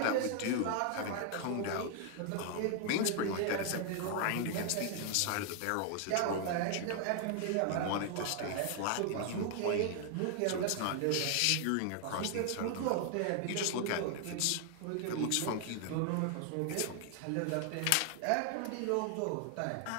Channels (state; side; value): different; both; correlation 0.00